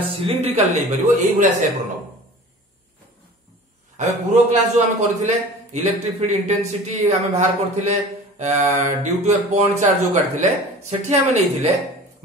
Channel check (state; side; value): normal; both; correlation 0.41